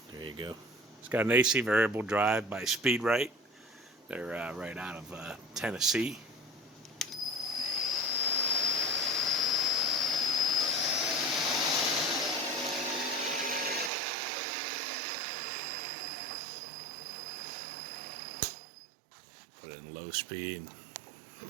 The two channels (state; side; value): drops out; left; at 13.9 s